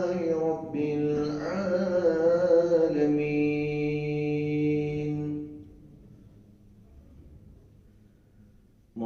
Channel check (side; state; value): both; identical; correlation 1.00